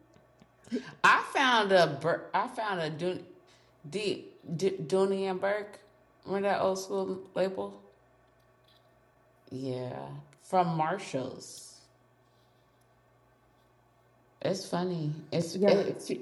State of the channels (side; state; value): both; identical; correlation 1.00